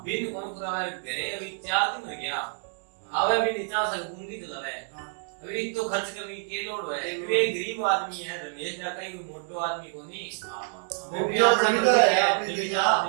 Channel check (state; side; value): silent; left; 60 dB below the other